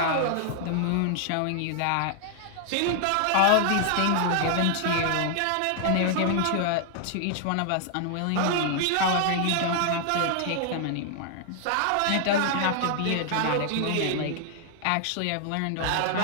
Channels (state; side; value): different; both; correlation 0.00